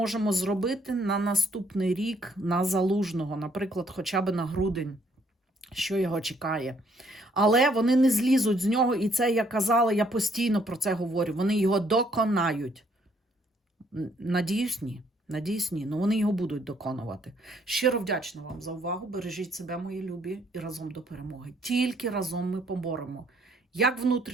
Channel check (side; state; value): both; normal; correlation 0.67